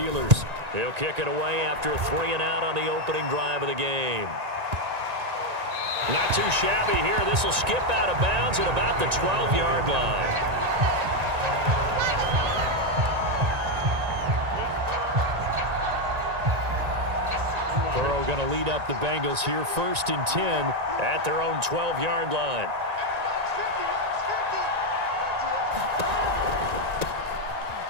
He'll kick it away after a 3-and-out on the opening drive of the game. Not too shabby here. This will skip out of bounds at about the 12-yard line. Burrow going to lead up the Bengals here 1st and 10 at their own 12-yard line.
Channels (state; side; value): late; left; 1.9 ms